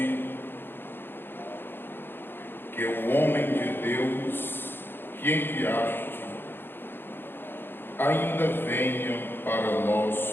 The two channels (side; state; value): right; late; 0.10 ms